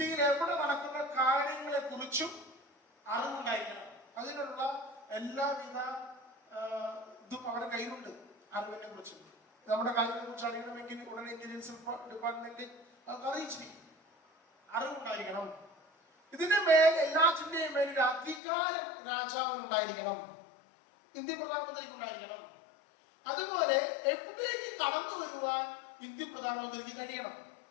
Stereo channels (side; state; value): right; drops out; at 18.4 s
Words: എവിടെ നടക്കുന്ന കാര്യങ്ങളെ കുറിച്ചും അറിവുണ്ടായിരിക്കണം. അതിനുള്ള എല്ലാവിധ ഇതും അവരുടെ കയ്യിലുണ്ട്. അറിവിനെ കുറിച്ചും നമ്മുടെ കാര്യങ്ങളെ കുറിച്ച് അറിയണമെങ്കിൽ ഉടനെ ഇന്റലിജൻസ് ഡിപ്പാർട്ട്മെന്റ് അറിയിച്ചിരിക്കും. അറിവുണ്ടായിരിക്കണം. ഇതിന്റെ മേൽ എല്ലാറ്റിന്റെയും മേൽ ഒരു അധികാരം രാജാവിനുണ്ടായിരിക്കണം. ഇന്ത്യൻ പ്രധാനമന്ത്രിക്ക് ഉണ്ടായിരിക്കണം. അതുപോലെ എവിടേക്ക് കടന്നു വരുവാൻ ഇന്ത്യൻ പ്രധാനമന്ത്രിക്ക് കഴിയണം.